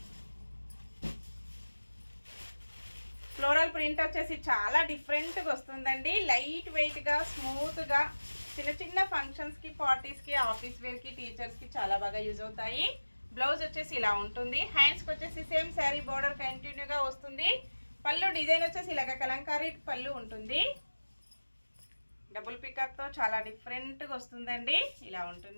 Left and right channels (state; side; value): inverted; both; correlation -1.00